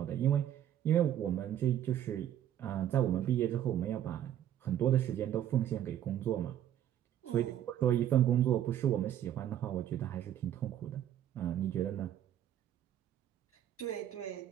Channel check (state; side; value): quieter; left; 11.1 dB